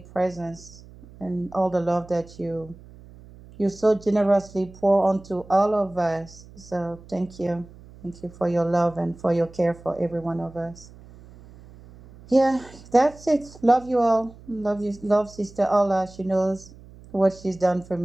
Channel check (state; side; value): noise; right; hum, 21 dB below the sound